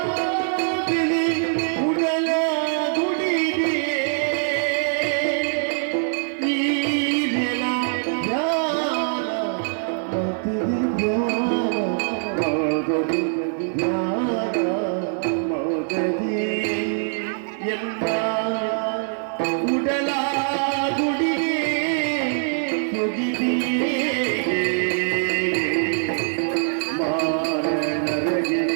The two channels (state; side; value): silent; left; digital silence